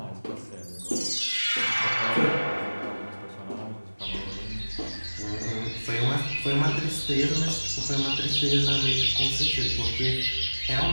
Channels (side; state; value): both; inverted; correlation -1.00